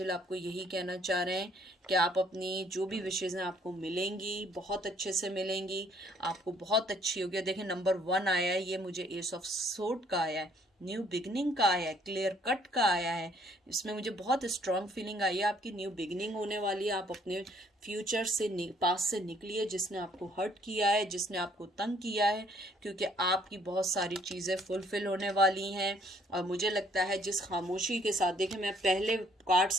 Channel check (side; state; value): both; normal; correlation 0.63